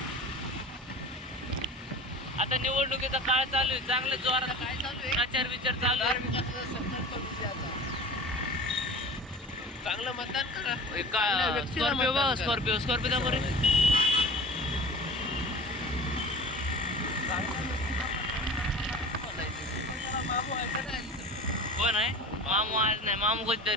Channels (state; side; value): normal; both; correlation 0.37